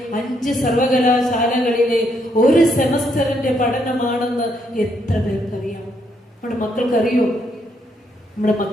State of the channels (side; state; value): both; normal; correlation 0.74